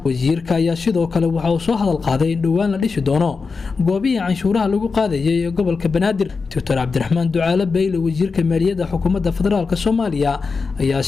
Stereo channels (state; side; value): quieter; right; 4.7 dB